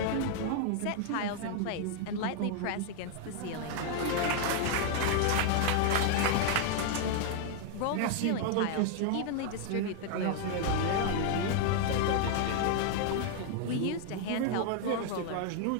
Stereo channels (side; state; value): both; different; correlation 0.00